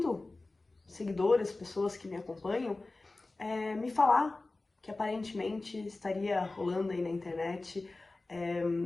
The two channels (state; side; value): quieter; right; 3.2 dB